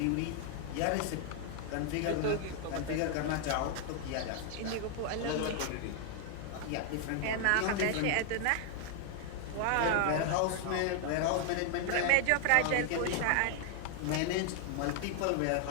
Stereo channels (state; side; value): different; both; correlation 0.00